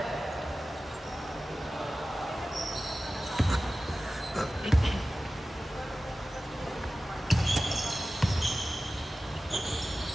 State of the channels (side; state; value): both; normal; correlation 0.95